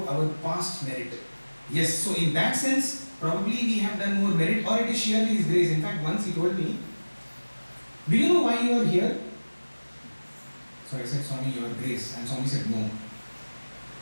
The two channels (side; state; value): both; inverted; correlation -1.00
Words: our past merit. Yes, so in that sense, probably we have done more merit, or it is sheerly His grace. In fact, once he told me, do you know why you are here? So I said, Swami, your grace. And Swami said, no.